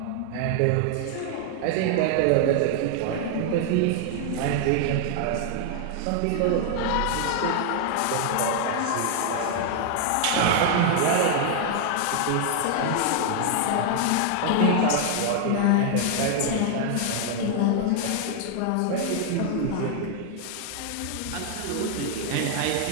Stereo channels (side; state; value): both; different; correlation 0.00